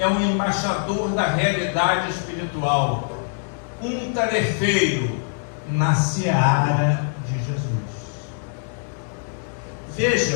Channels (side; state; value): right; silent; 58 dB below the other